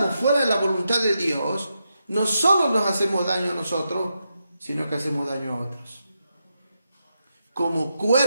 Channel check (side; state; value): both; inverted; correlation -0.85